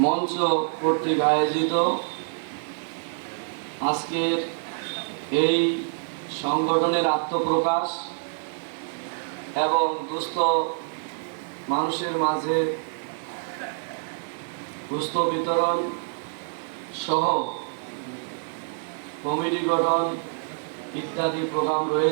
মঞ্চ কর্তৃক আয়োজিত আজকের এই সংগঠনের আত্মপ্রকাশ এবং দুস্থ মানুষের মাঝে দুস্থ বিতরণ সহ কমিটি গঠন ইত্যাদি প্রোগ্রাম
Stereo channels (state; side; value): silent; left; digital silence